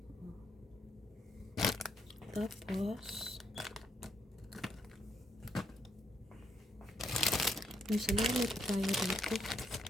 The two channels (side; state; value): both; normal; correlation 0.74